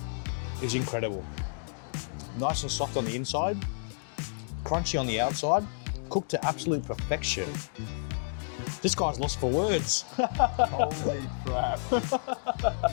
is incredible. Nice and soft on the inside, crunchy on the outside, cooked to absolute perfection. This guy's lost for words. Holy crap.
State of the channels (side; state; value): right; silent; digital silence